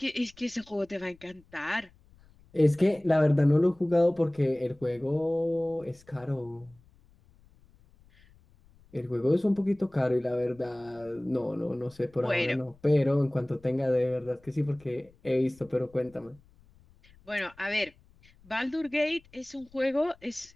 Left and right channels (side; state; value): left; noise; rumble, 28 dB below the sound